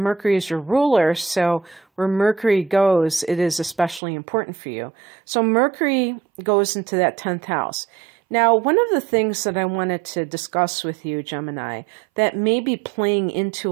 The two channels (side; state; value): left; drops out; at 4.0 s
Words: is your ruler, so where Mercury goes, it is especially important for you. So Mercury goes into that 10th house. Now, one of the things that I wanted to discuss with you, Gemini, that may be playing into